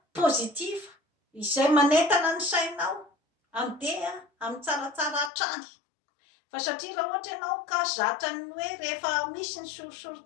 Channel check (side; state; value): right; drops out; at 5.3 s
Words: pozitiva izay manentana ny sainao andeha amin'ny tsaratsara hatrany. Fa satria raha ohatra ianao ka zatra ny hoe rehefa misy ny